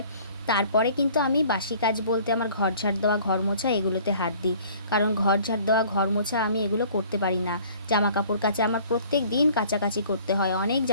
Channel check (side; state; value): both; inverted; correlation -0.52